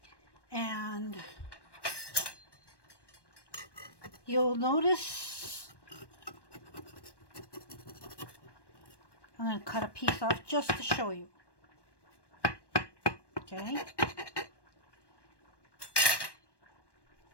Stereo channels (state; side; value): late; right; 1.1 ms